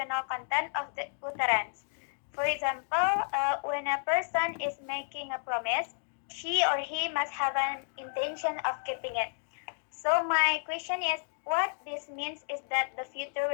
content of the utterance. For example, when a person is making a promise, she or he must have an intention of keeping it. So my question is, what this means is that the future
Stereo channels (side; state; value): right; silent; digital silence